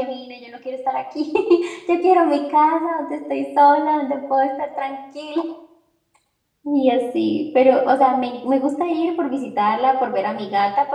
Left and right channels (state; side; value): identical; both; correlation 1.00